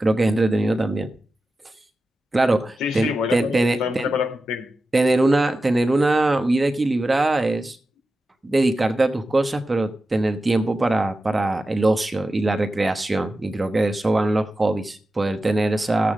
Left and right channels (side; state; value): both; normal; correlation 0.92